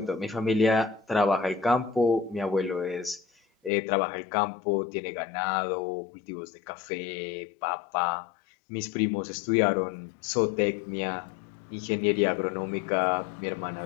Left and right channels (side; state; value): right; drops out; at 3.7 s